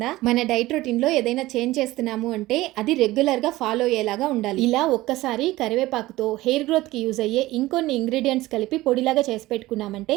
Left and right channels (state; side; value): quieter; left; 17.8 dB